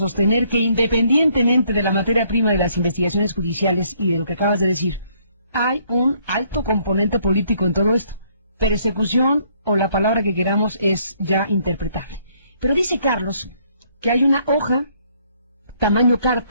que, independientemente de la materia prima de las investigaciones judiciales y de lo que acabas de decir, hay un alto componente político en todo esto. Persecución, o la palabra que queramos, es ya interpretable. Pero dice Carlos que hay una hoja, tamaño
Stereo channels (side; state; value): both; inverted; correlation -0.67